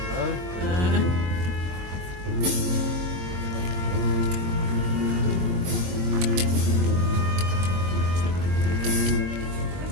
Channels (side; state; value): left; late; 22 ms